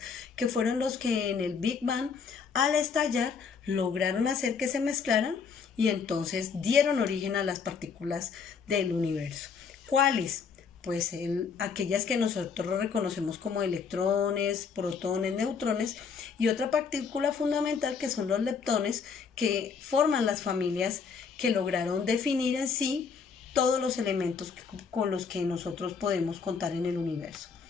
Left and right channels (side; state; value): right; quieter; 5.9 dB